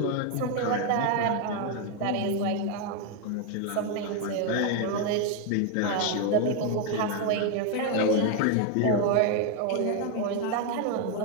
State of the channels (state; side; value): different; both; correlation 0.01